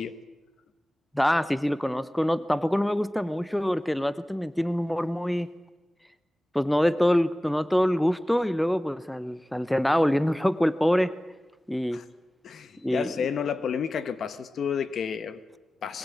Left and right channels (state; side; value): normal; both; correlation 0.97